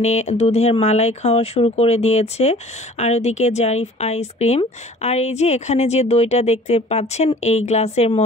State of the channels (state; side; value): normal; both; correlation 0.49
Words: দুধের মালাই খাওয়া শুরু করে দিয়েছে, আর ওদিকে জারিফ আইসক্রিম। আর এই যে এখানে যে দইটা দেখতে পাচ্ছেন এই গ্লাসের